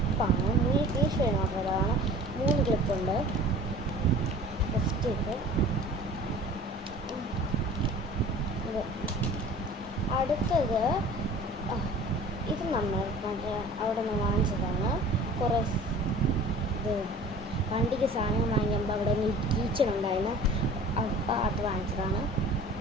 3 പീസ് മാത്രമാണ്. 3 ക്ലിപ്പുണ്ട്. ഫസ്റ്റ് ഇത് അടുത്തത് ഇത് നമ്മൾ അവിടെ നിന്ന് വാങ്ങിച്ചതാണ്. കുറേ ഇത് വണ്ടിക്ക് സാധനം വാങ്ങിക്കുമ്പോൾ അവിടെ കിച്ചൺ ഉണ്ടായിരുന്നു. അപ്പോൾ അത് വാങ്ങിച്ചതാണ്.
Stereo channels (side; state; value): both; normal; correlation 0.44